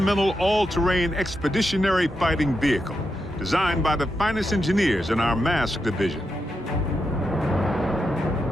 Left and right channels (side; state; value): both; normal; correlation 0.86